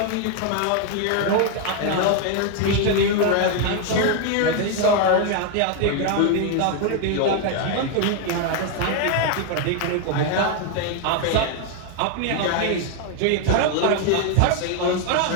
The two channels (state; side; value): different; both; correlation 0.00